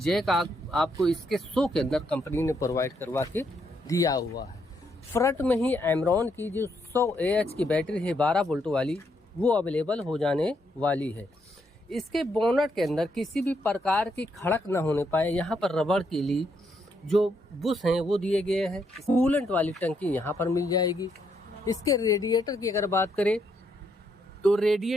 आपको इसके शो के अंदर कंपनी ने प्रोवाइड करवा के दिया हुआ है। फ्रंट में ही एमरॉन की जो 100 AH की बैटरी है 12 वोल्ट वाली वो अवेलेबल हो जाने वाली है। इसके बोनट के अंदर किसी भी प्रकार की खड़क ना होने पाए, यहाँ पर रबड़ के लिए जो बुश हैं वो दिए गए हैं। कूलेंट वाली टंकी यहाँ पर मिल जाएगी। इसके रेडिएटर की अगर बात करें तो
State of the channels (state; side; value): normal; both; correlation 0.76